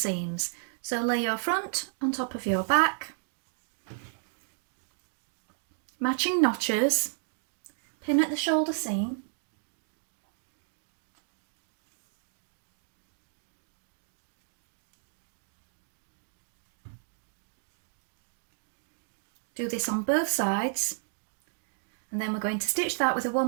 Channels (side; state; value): left; silent; digital silence